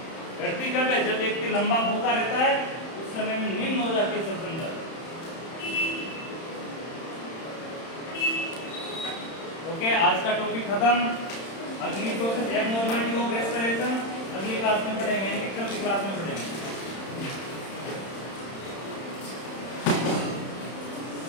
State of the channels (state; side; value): late; right; 31 ms